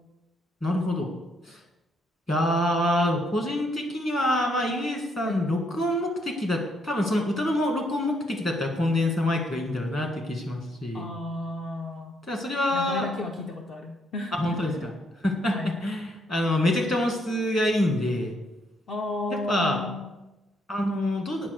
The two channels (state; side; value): normal; both; correlation 0.72